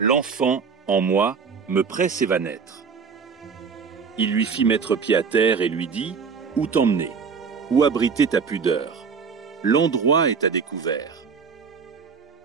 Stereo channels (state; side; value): quieter; left; 5.7 dB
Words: en moi, me presse et va naître. Il lui fit mettre pied à terre et lui dit, où t'emmener? Où abriter ta pudeur? L'endroit est à découvert.